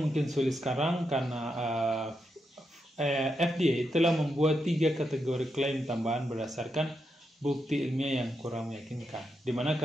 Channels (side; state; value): both; normal; correlation 0.84